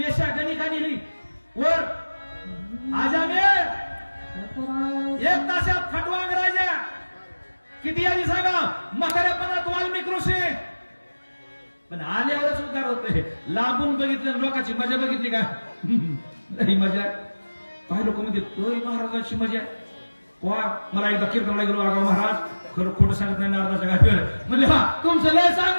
गणिका नेली वर आजामे 1 तासात खटवांग राजा किती आधी सांगा म्हाताऱ्यापणात वाल्मिक ऋषी. पण आल्यावरच उद्धार होते. लांबून बघितलं लोकांची मजा बघितली का ही मजा काही लोक म्हणजे तोय महाराजाची मजा. मला एकदा कीर्तनला गेलो आगाव महाराज खरं खोटं सांगत नाही नारदाच्या घाटीवर म्हणजे हा तुमचं लय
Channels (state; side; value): inverted; both; correlation -1.00